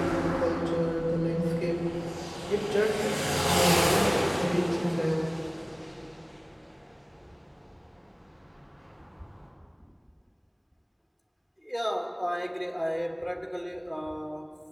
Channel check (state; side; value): identical; both; correlation 1.00